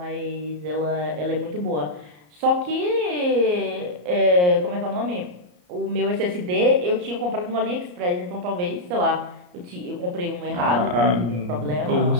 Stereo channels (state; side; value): late; left; 34 ms